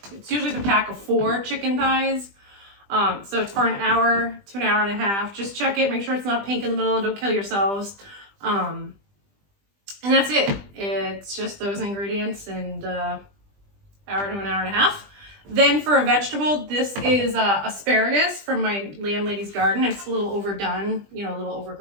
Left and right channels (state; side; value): late; left; 20 ms